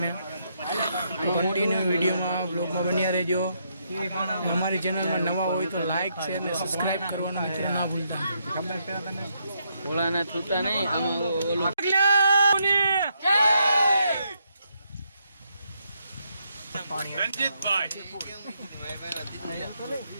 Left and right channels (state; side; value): inverted; both; correlation -0.77